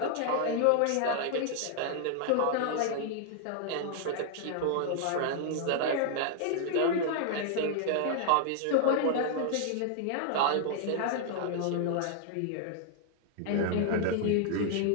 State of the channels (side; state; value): both; different; correlation 0.00